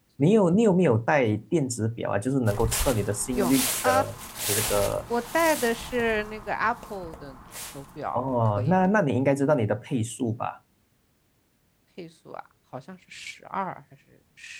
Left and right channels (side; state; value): both; identical; correlation 1.00